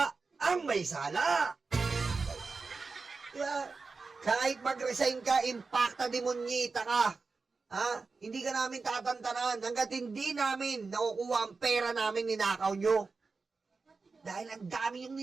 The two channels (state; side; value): quieter; left; 4.3 dB